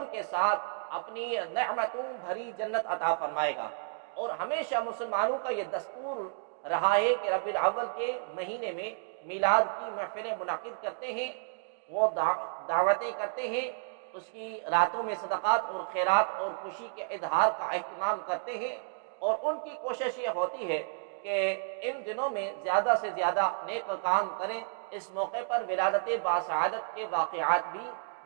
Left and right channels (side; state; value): left; silent; digital silence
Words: کے ساتھ اپنی نعمتوں بھری جنت عطا فرمائے گا۔ اور ہمیشہ مسلمانوں کا یہ دستور رہا ہے کہ ربیع الاول کے مہینے میں میلاد کی محفلیں منعقد کرتے ہیں، وہ دعوتیں کرتے ہیں، اس کی راتوں میں صدقات اور خیرات اور خوشی کے اظہار کا اہتمام کرتے ہیں، اور ان کی کوشش یہ ہوتی ہے کہ ان دنوں میں زیادہ سے زیادہ نیک کام کریں۔ اس موقع پر ولادت باسعادت کے واقعات بھی